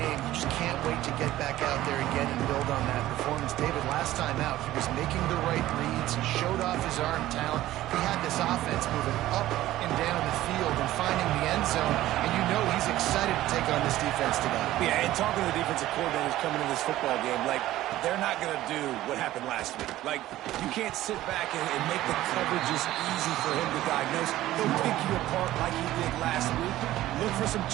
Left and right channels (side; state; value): left; quieter; 15.0 dB